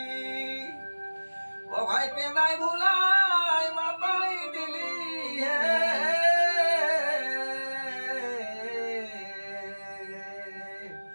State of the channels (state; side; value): inverted; both; correlation -1.00